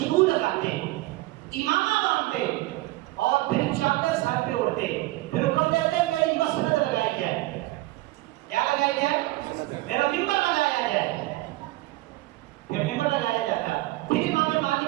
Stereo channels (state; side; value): quieter; left; 19.0 dB